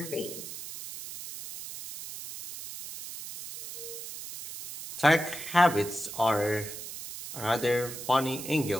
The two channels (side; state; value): right; noise; hiss, 10 dB below the sound